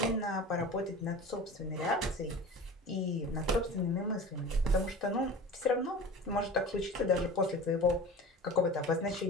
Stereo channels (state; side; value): normal; both; correlation 0.36